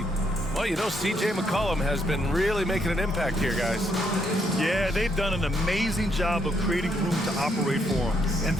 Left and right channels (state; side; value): normal; both; correlation 0.74